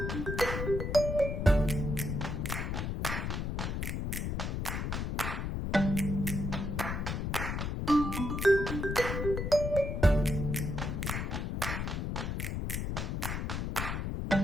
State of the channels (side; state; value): left; noise; rumble, 2 dB below the sound